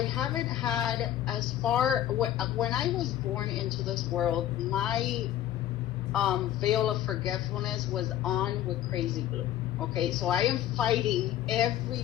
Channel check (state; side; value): quieter; right; 12.0 dB